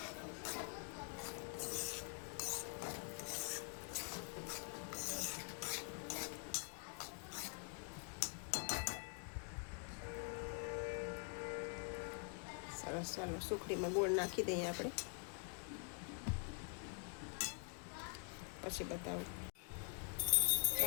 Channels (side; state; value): right; quieter; 37.2 dB